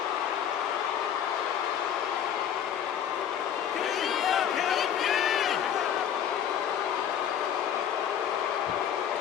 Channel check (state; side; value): quieter; right; 9.1 dB